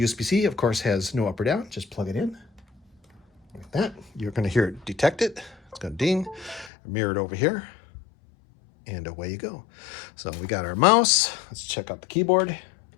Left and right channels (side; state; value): right; drops out; at 6.7 s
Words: of course, has no up or down. Just plug it in like that. You're going to hear it detect it. It's going to ding, mirror it over here. And away you go. So we got our mouse. Let's check out the keyboard.